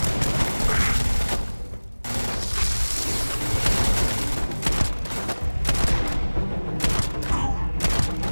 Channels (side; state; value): both; inverted; correlation -1.00